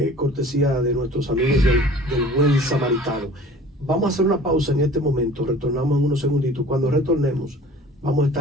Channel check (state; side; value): normal; both; correlation 0.45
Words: cortesía de nuestros amigos del Buen Samaritano. Vamos a hacer una pausa en este momento, retornamos en unos segunditos. Cuando retornemos, vamos a